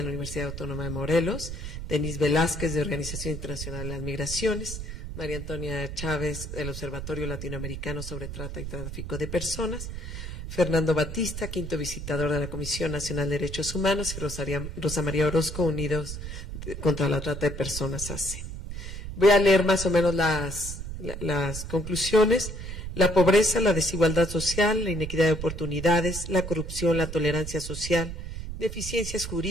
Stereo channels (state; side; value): noise; right; rumble, 7 dB below the sound